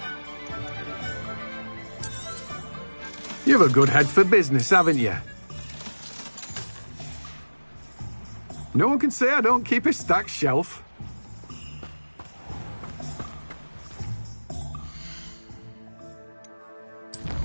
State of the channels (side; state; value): both; inverted; correlation -1.00